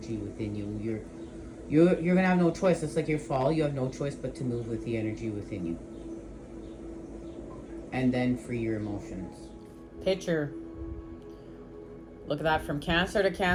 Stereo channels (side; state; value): both; identical; correlation 1.00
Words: within you. You're gonna have no choice. It's like your fall. You have no choice but to move with the energy within you, and then free your emotions. Picture. Look at that, from Cancer to